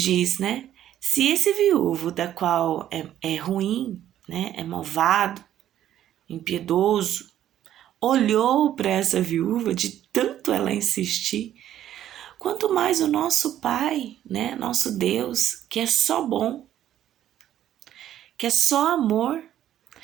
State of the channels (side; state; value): left; quieter; 11.6 dB